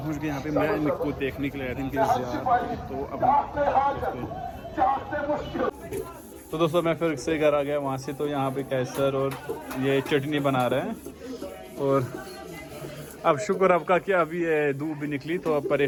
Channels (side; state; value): both; identical; correlation 1.00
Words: गए यहाँ पे, मैं इनको देखने के लिए आया था इनके तो अब तो दोस्तों मैं फिर से घर आ गया वहाँ से। तो यहाँ पे कैसर और ये चटनी बना रहे हैं और अब शुक्र आपका कि अभी ये धूप भी निकली तो अब